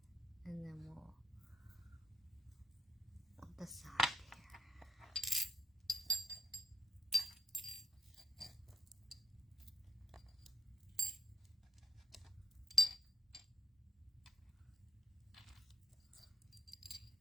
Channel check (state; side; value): normal; both; correlation 0.75